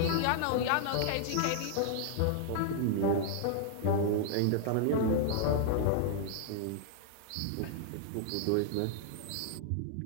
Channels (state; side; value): different; both; correlation -0.01